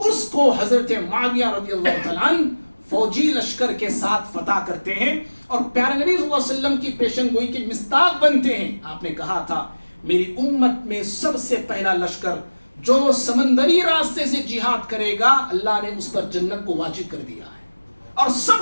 اس کو حضرت معاویہ رضی اللہ تعالیٰ عنہ فوجی لشکر کے ساتھ فتح کرتے ہیں، اور پیارے نبی صلی اللہ علیہ وسلم کی پیشن گوئی کے مصداق بنتے ہیں. آپ نے کہا تھا، میری امت میں سب سے پہلا لشکر جو سمندری راستے سے جہاد کرے گا، اللہ نے اس پر جنت کو واجب کر دیا ہے. اور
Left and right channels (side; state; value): both; inverted; correlation -1.00